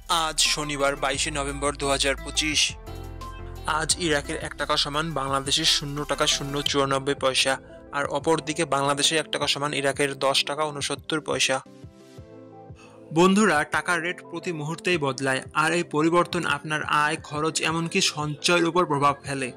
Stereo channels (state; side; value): identical; both; correlation 1.00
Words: আজ শনিবার 22শে নভেম্বর 2025। আজ ইরাকের 1 টাকা সমান বাংলাদেশের 0 টাকা 0.94 পয়সা, আর অপরদিকে বাংলাদেশের 1 টাকা সমান ইরাকের 10 টাকা 69 পয়সা। বন্ধুরা, টাকার রেট প্রতি মুহূর্তেই বদলায়, আর এই পরিবর্তন আপনার আয়, খরচ, এমনকি সঞ্চয়ের উপর প্রভাব ফেলে।